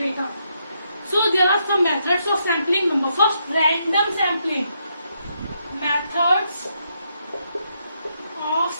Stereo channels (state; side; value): inverted; both; correlation -0.78